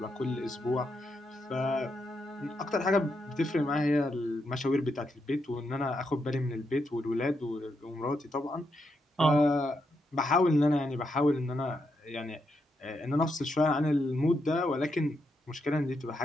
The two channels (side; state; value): both; normal; correlation 0.81